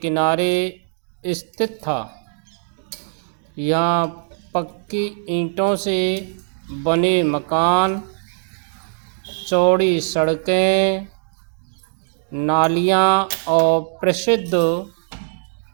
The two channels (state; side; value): silent; left; digital silence